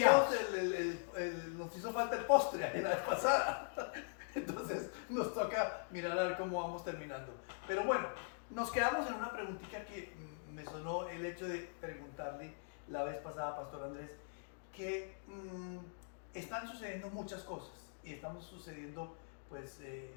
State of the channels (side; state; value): right; silent; digital silence